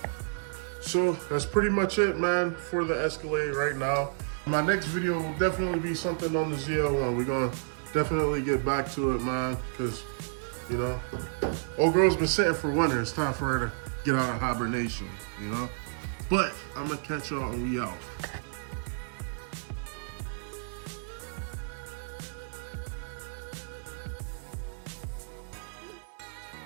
So that's pretty much it, man, for the Escalade right now. My next video will definitely be something on the ZL1. We're gonna definitely get back to it, man, because, you know, old girl's been sitting for winter. It's time for her to get out of hibernation, you know? But I'm gonna catch y'all and we out.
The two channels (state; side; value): silent; left; digital silence